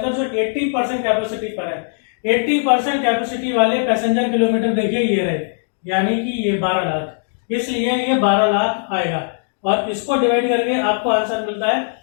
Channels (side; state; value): right; silent; digital silence